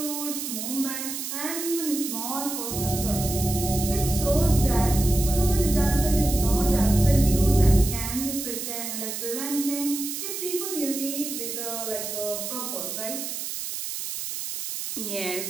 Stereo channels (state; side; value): noise; right; hiss, 5 dB below the sound